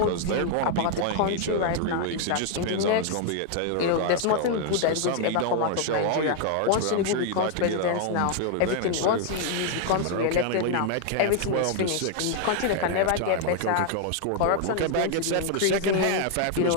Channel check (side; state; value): both; different; correlation 0.00